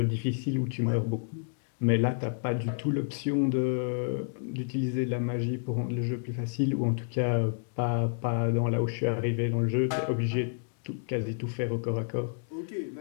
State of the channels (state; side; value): silent; right; digital silence